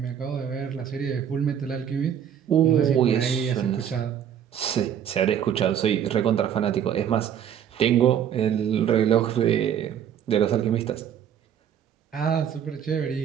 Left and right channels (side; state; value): left; quieter; 9.1 dB